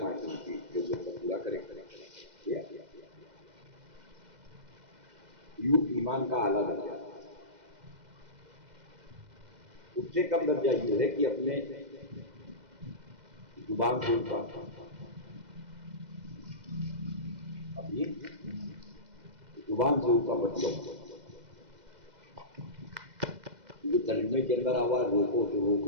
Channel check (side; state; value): left; late; 2.1 ms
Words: جو پورا کرے یوں ایمان کا اعلیٰ درجہ. اس سے کم درجہ یہ ہے کہ اپنے زبان کے اوپر اپنی زبان سے اوپر بچو. جو ترجمے کے اندر آواز روکو تو